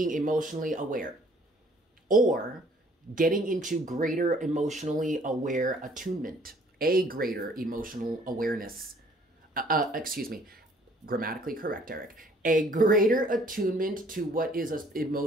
emotionally aware or getting into greater emotionally aware attunement, a greater emotional awareness. Excuse me, grammatically correct, Eric. A greater attunement to what is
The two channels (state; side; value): normal; both; correlation 0.59